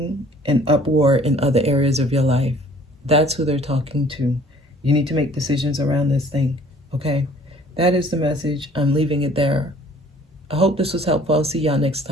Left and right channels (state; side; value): normal; both; correlation 0.54